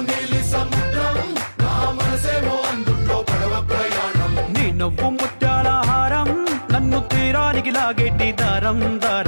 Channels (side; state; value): both; inverted; correlation -1.00